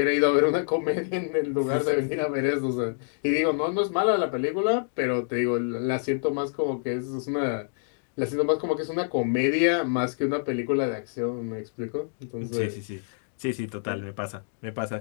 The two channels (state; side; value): silent; right; digital silence